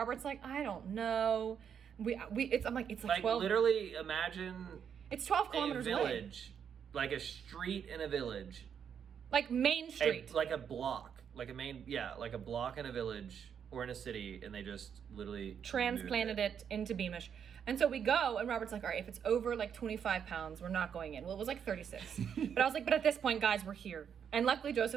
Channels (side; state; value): left; quieter; 7.8 dB